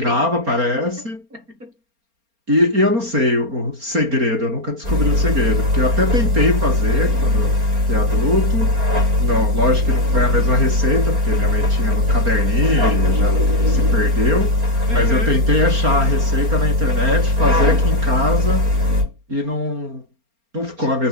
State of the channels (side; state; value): left; late; 4.3 ms